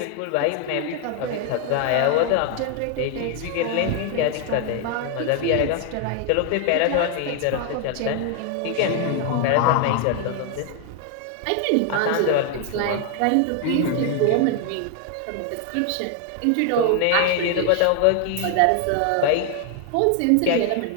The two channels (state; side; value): different; both; correlation 0.00